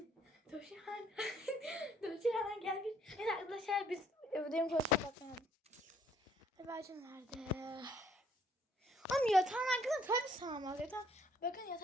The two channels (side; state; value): both; normal; correlation 0.65